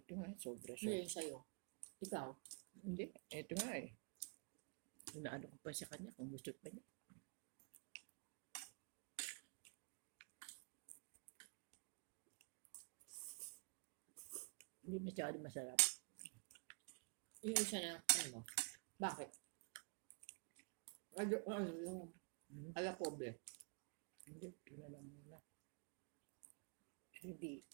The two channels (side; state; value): left; quieter; 33.6 dB